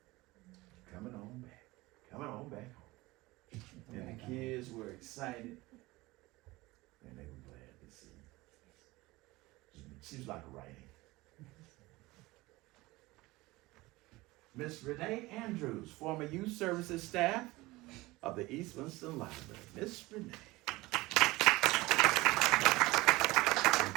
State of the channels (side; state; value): left; quieter; 20.5 dB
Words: coming on back. Coming on back home. And the kids were excited. And they were glad to see. She was like a writing. Miss Renee Andrews, former youth services staff of the East Winston Library. Miss Renee.